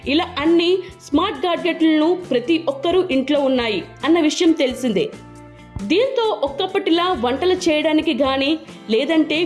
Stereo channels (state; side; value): identical; both; correlation 1.00